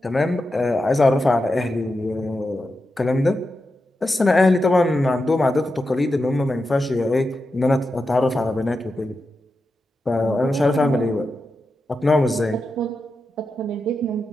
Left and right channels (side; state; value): both; normal; correlation 0.89